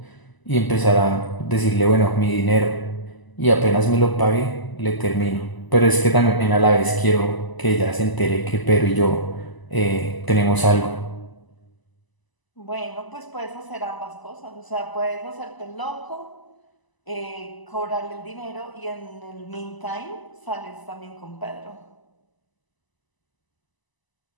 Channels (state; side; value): late; right; 1.0 ms